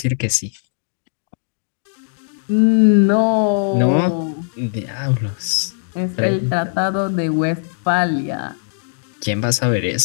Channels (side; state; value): right; silent; digital silence